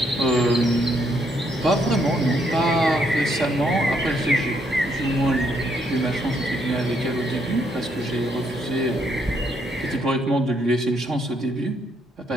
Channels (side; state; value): both; normal; correlation 0.73